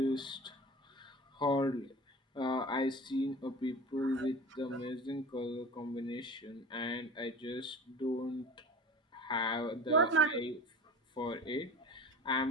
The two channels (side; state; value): both; normal; correlation 0.36